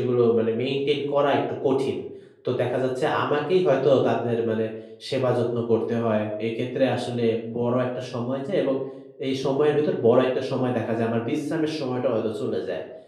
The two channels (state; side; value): identical; both; correlation 1.00